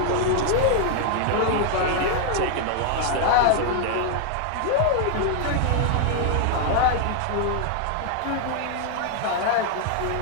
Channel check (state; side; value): different; both; correlation 0.00